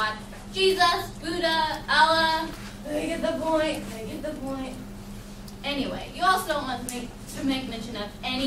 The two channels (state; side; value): identical; both; correlation 1.00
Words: Jesus, Buddha, Allah. I get the point. I get the point. Anyway, you also don't want to make mention of